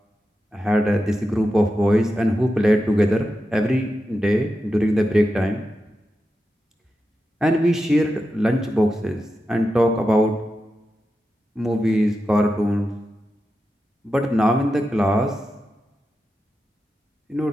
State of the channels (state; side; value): normal; both; correlation 0.89